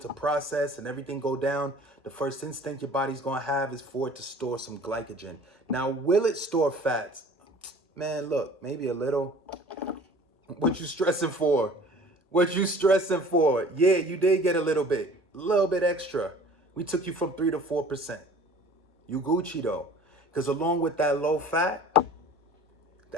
process and everything go down. The first instinct your body's going to have is for it to store some glycogen. Now, will it store fats? Man, look, maybe a little. What you stressing for? Yeah, you did get a little bit extra. We took you from 3 to 4%. You Gucci though. Because along with that low fat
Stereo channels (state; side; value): normal; both; correlation 0.47